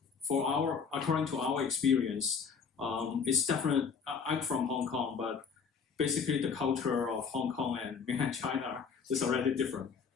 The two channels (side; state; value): right; quieter; 6.0 dB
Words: according to our experience, it's definitely, I'm from Hong Kong, but basically the culture of Hong Kong and mainland China is already different.